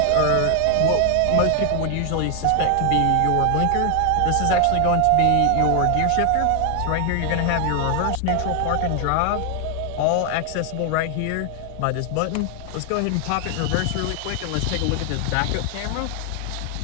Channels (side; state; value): both; different; correlation 0.00